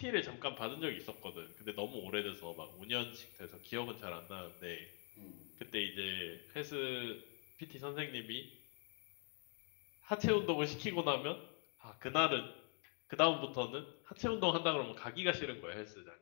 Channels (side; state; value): right; quieter; 39.0 dB